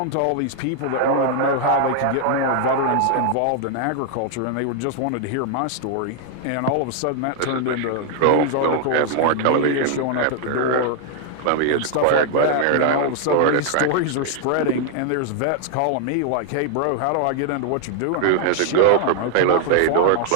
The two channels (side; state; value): both; different; correlation 0.00